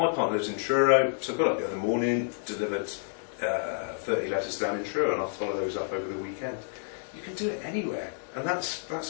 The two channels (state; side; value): silent; right; digital silence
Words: partner lives in Truro, so I got up the other morning, delivered 30 letters down in Truro, and I'll follow those up over the weekend. You can do it anywhere, and